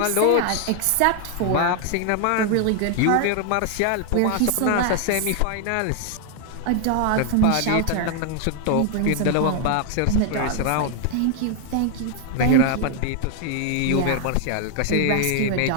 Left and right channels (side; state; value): both; different; correlation 0.00